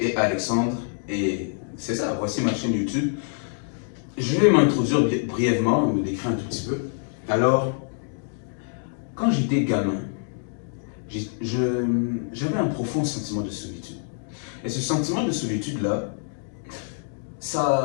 Alexandre, et c'est ça, voici ma chaîne YouTube. Je vais m'introduire brièvement, me décrire un tout petit peu. Alors, quand j'étais gamin, j'avais un profond sentiment de solitude. Et ce sentiment de solitude-là,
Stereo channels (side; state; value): right; silent; digital silence